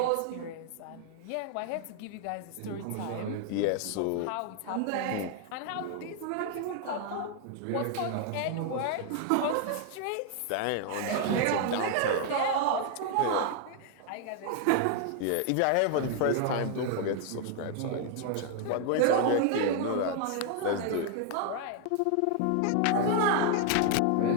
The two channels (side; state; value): both; different; correlation 0.00